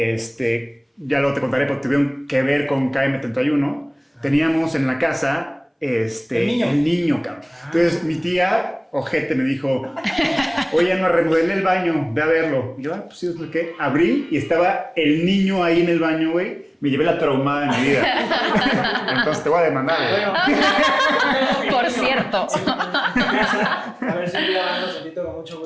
luego te contaré, porque tuvieron que ver con KM31. Teníamos en la casa el niño, cabrón. Entonces mi tía, ojete, me dijo, oye, no remodelé el baño, ve a verlo. Y yo, pues sí, ¿qué? Abrí y estaba el niño ahí en el baño, güey. Me llevé la traumada de mi vida. Entonces te voy a demandar, güey. Por cierto. A ver si un día vamos, invito con mucho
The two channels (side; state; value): both; identical; correlation 1.00